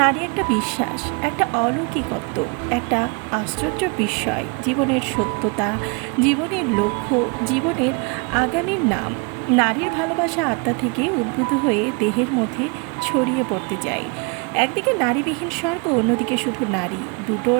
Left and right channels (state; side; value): quieter; left; 32.8 dB